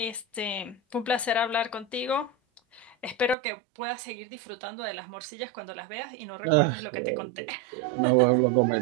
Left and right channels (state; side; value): drops out; left; at 3.4 s